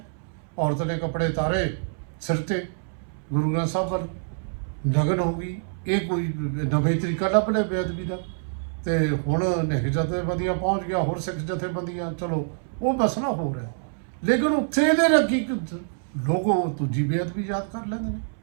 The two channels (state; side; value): silent; left; 61 dB below the other